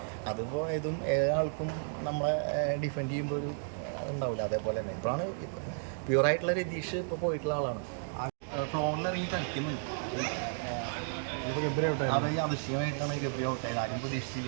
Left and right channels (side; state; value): left; silent; digital silence